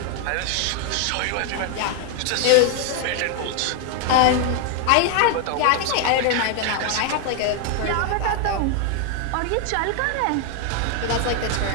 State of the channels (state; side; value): different; both; correlation 0.00